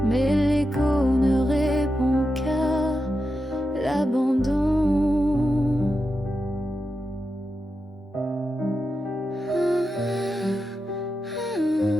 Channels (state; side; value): normal; both; correlation 0.89